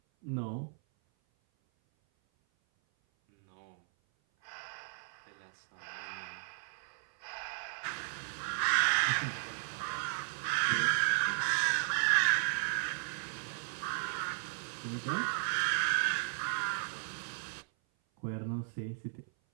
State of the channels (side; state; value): left; silent; 54 dB below the other